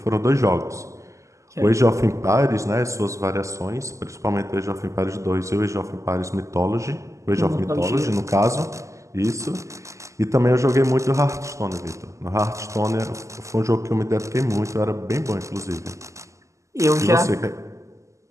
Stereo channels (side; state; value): left; late; 0.15 ms